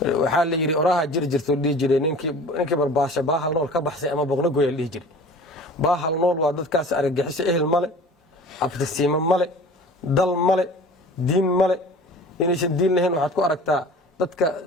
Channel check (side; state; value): both; normal; correlation 0.42